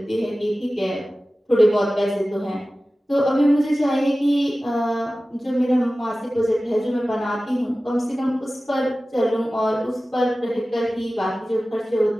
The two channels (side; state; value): both; normal; correlation 0.96